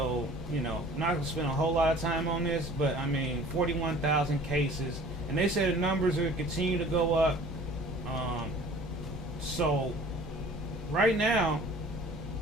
you know, I'm not going to spend a whole lot of time on this, but I mean, 41,000 cases. And they said the numbers are going to continue to go up. So, right now,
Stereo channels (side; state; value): both; normal; correlation 0.48